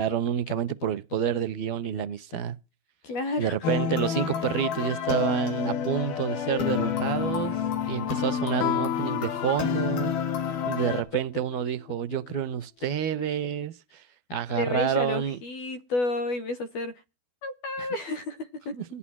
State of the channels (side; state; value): right; late; 12 ms